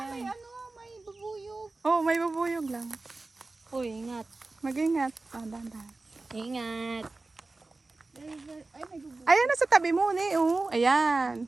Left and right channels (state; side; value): quieter; left; 3.4 dB